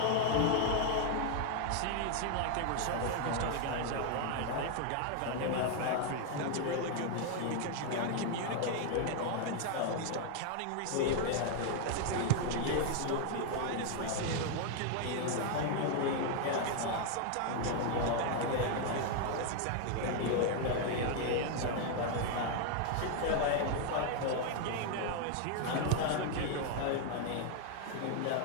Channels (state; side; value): different; both; correlation 0.00